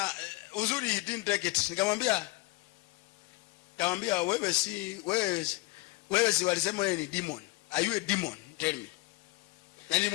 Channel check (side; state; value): right; quieter; 22.1 dB